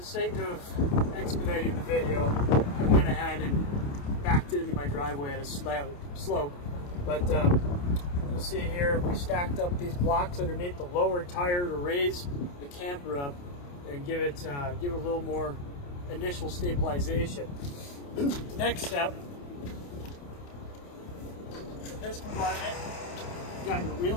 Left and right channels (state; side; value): late; right; 28 ms